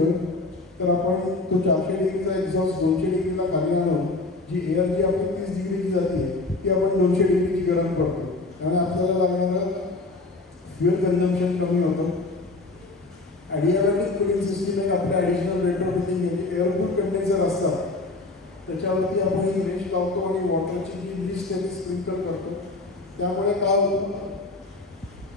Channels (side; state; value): right; quieter; 3.3 dB